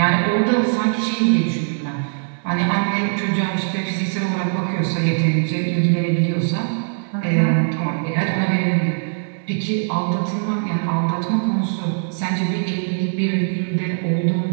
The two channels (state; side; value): silent; left; digital silence